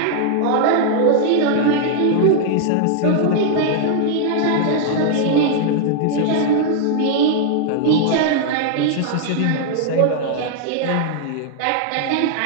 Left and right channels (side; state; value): both; different; correlation -0.01